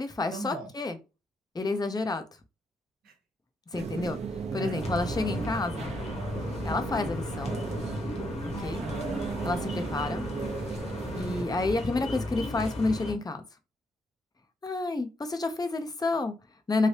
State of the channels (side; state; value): both; normal; correlation 0.78